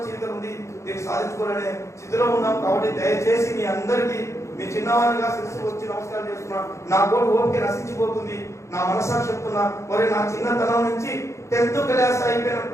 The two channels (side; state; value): right; late; 0.14 ms